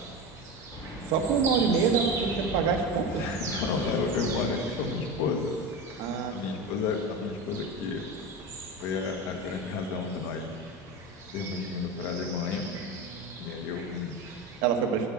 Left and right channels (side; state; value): both; normal; correlation 0.24